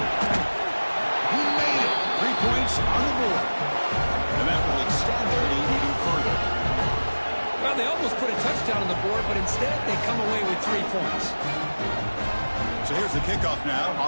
Instead, they come away with 3 points. So here's the kickoff now.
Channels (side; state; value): both; inverted; correlation -1.00